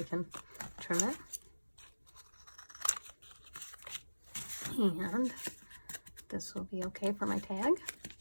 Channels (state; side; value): inverted; both; correlation -1.00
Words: can trim it. And this will be okay for my tag.